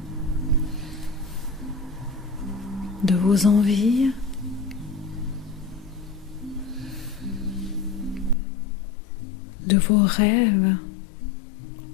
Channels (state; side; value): drops out; right; at 8.3 s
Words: de vos envies, de vos rêves